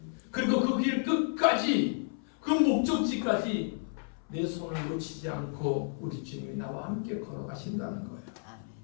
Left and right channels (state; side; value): silent; right; 57 dB below the other